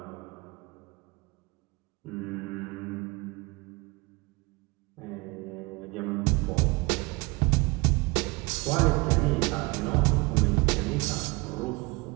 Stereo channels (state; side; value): quieter; left; 25.6 dB